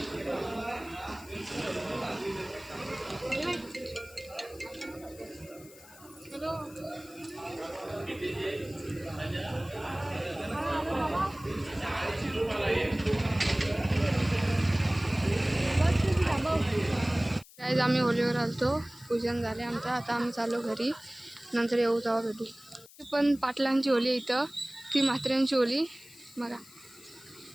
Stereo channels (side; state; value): left; noise; hiss, 21 dB below the sound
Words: आज आम्ही होलीवर आलतो, पूजन झाले आमचं. आता आम्ही चाललो घरी, नंतर येऊ तेव्हा भेटू. पण पाटलांची होली इथं, ती म्हात्र्यांची होली बघा.